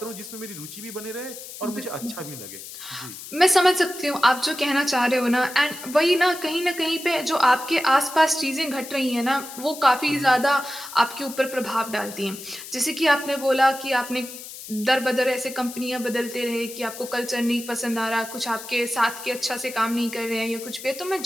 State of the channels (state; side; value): noise; left; hiss, 13 dB below the sound